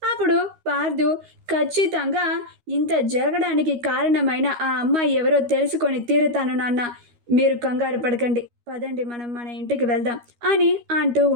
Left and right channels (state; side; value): late; left; 13 ms